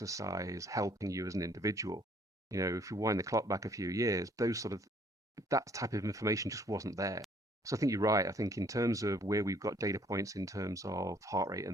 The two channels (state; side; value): normal; both; correlation 0.62